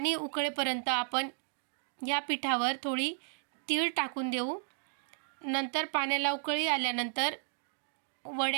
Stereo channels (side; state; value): left; silent; digital silence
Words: उकळेपर्यंत आपण या पिठावर थोडी तीळ टाकून देऊ। नंतर पाण्याला उकळी आल्यानंतर